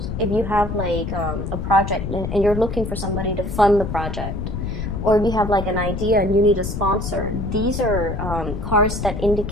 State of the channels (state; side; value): noise; left; rumble, 5 dB below the sound